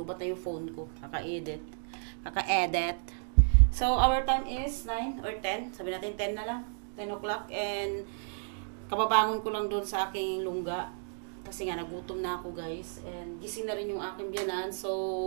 na yung phone ko. Kaka-edit. So, our time is 9 or 10. Sabi natin 10 na lang. 10 o'clock. And, kababangon ko lang doon sa aking lungga. Kasi nga, nagutom na ako guys. And, gising na rin yung aking biyanan.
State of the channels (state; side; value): silent; left; digital silence